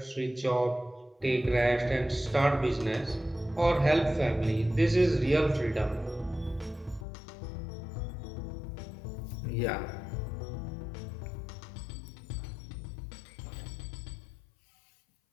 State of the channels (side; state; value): right; drops out; at 7.1 s